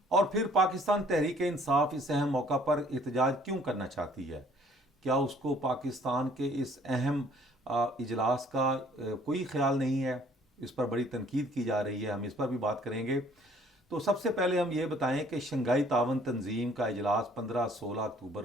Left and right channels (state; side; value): normal; both; correlation 0.58